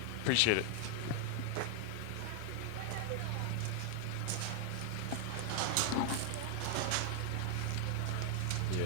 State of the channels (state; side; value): different; both; correlation 0.00